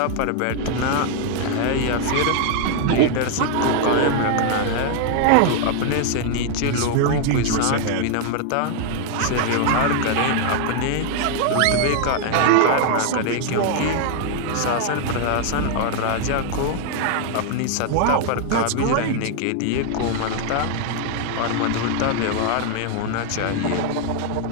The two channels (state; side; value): different; both; correlation 0.00